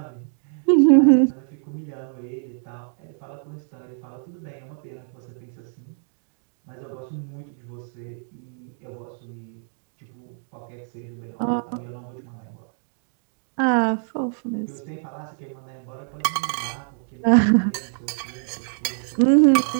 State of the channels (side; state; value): left; silent; 62 dB below the other